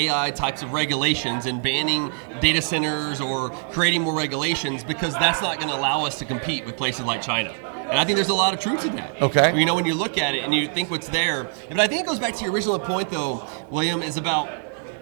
types of regulations and banning data centers or creating more regulations, because that's not going to allow us to compete with places like China. And I think there's a lot of truth to that. Okay. When you look at it and you think what's there. But I think it goes back to your original point, though, William, is about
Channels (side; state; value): left; silent; 63 dB below the other